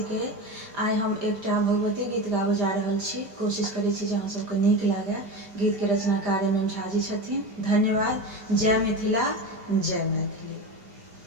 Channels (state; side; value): late; left; 5.0 ms